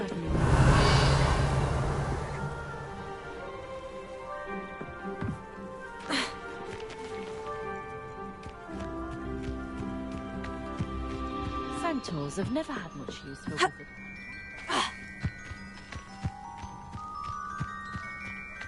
Centaurs have never had much use for wizard.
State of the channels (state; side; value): identical; both; correlation 1.00